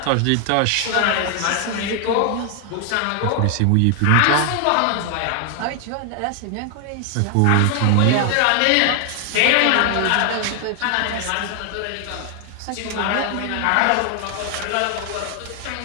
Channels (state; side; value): different; both; correlation 0.00